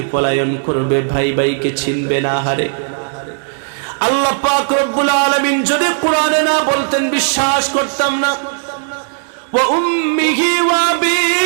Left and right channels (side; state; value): left; silent; digital silence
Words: পলায়ন করবে, ভাই ভাইকে চিনবে না। হারে আল্লাহ পাক রব্বুল আলামিন যদি কোরআনে না বলতেন বিশ্বাস করতাম না। ওয়া উম্মিহি ওয়া আবি,